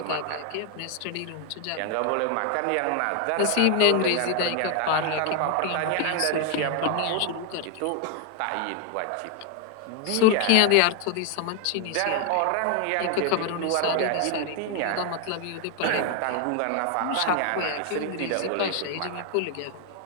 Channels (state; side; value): different; both; correlation 0.00